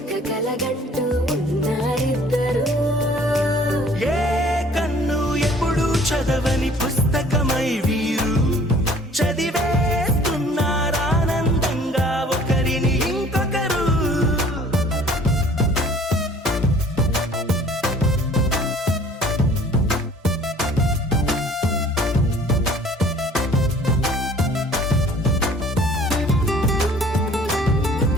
కలగంటూ ఉన్నారిద్దరు ఏ కన్ను ఎప్పుడు చదవని పుస్తకమై వీరు చదివేస్తున్నారానందంగా ఒకరిని ఇంకొకరు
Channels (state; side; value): normal; both; correlation 0.53